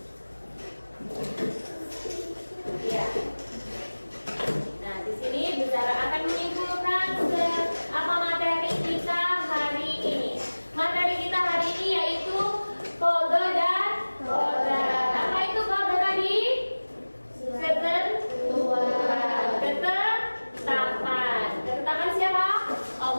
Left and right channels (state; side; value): inverted; both; correlation -1.00